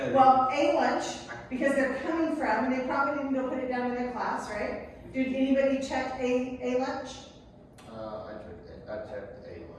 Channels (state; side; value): identical; both; correlation 1.00